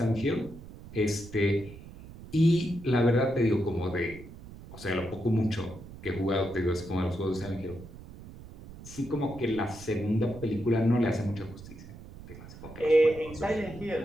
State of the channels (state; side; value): noise; right; rumble, 16 dB below the sound